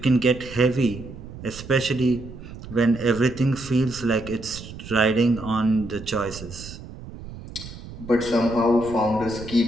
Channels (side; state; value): right; noise; rumble, 13 dB below the sound